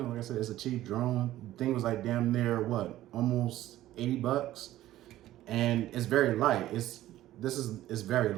know, like I said, it's a cheap drone. The thing was like damn near what, almost $80, and it's very light. It's very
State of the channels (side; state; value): left; quieter; 14.4 dB